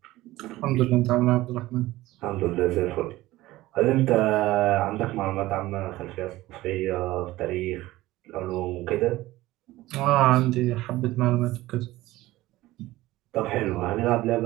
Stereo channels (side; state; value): left; quieter; 17.4 dB